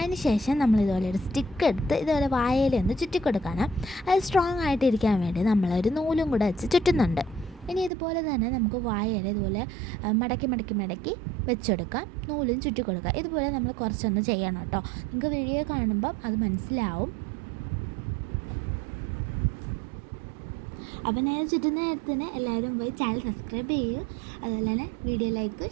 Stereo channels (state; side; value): drops out; left; at 7.9 s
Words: ശേഷം നമ്മളിതുപോലെ ഒരു സ്റ്റിക്ക് എടുത്ത് ഇതുപോലെ വാഴയില ഒന്ന് ചുറ്റിക്കൊടുക്കണം. അത് സ്ട്രോങ് ആയിട്ടിരിക്കാൻ വേണ്ടി നമ്മളൊരു നൂലും കൂടെ വെച്ച് ചുറ്റുന്നുണ്ട്. ഇനി ഇതുപോലെ തന്നെ നമുക്ക് വാഴയില ഇതുപോലെ മടക്കി വെച്ചെടുക്കാം, നൂലും ചുറ്റി കൊടുക്കുക. ഇതുപോലെ നമ്മൾ കുറച്ചൊന്ന് ചെയ്യണം കേട്ടോ. നിങ്ങൾക്ക് വീഡിയോ കാണുമ്പം അത് മനസ്സിലാവും. അപ്പോൾ ഞാൻ ചുറ്റുന്ന നേരത്തിന് എല്ലാവരും പോയി ചാനൽ സബ്സ്ക്രൈബ് ചെയ്യൂ, അതുപോലെ തന്നെ വീഡിയോ ലൈക്ക്